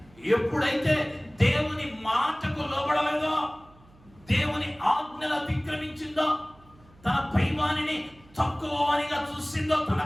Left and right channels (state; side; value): noise; right; hum, 27 dB below the sound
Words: ఎప్పుడైతే దేవుని మాటకు లోబడలేదో, దేవుని ఆజ్ఞలు అతిక్రమించిందో, తన పైవానిని తక్కువనిగా చూసిందో,